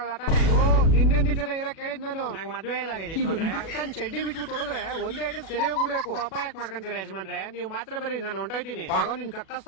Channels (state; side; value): late; right; 37 ms